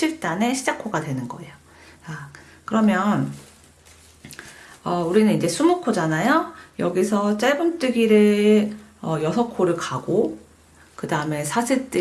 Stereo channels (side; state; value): both; identical; correlation 1.00